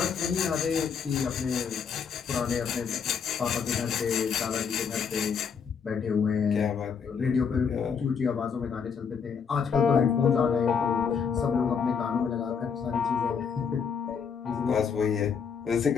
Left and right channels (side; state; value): right; quieter; 6.5 dB